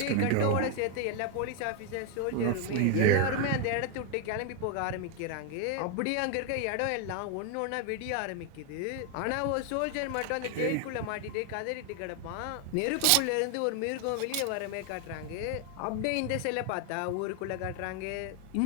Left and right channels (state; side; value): different; both; correlation 0.01